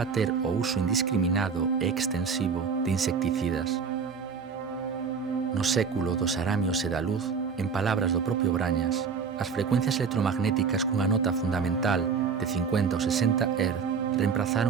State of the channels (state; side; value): quieter; left; 5.8 dB